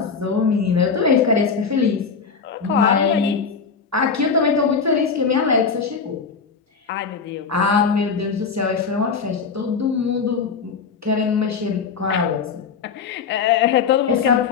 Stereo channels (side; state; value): right; quieter; 5.6 dB